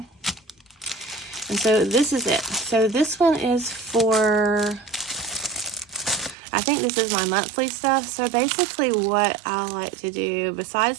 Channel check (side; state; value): left; drops out; at 6.4 s